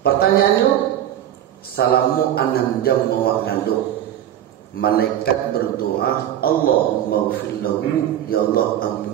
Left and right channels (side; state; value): left; quieter; 11.2 dB